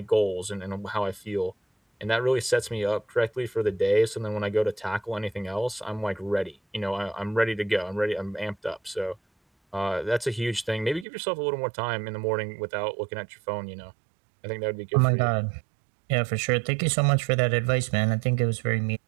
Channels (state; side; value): drops out; left; at 11.1 s